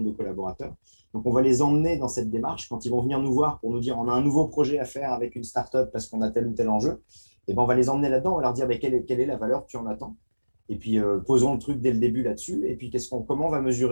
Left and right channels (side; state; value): both; inverted; correlation -1.00